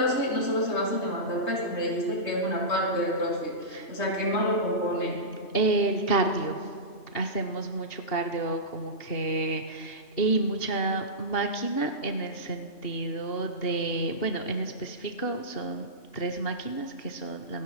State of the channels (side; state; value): right; late; 2.8 ms